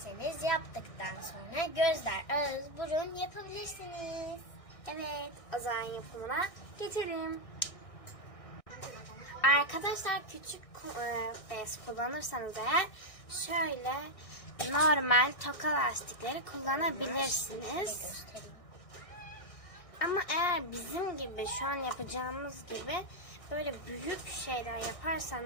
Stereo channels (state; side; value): late; right; 1.6 ms